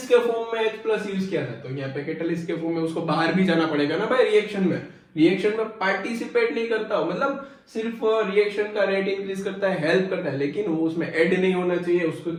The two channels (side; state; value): both; identical; correlation 1.00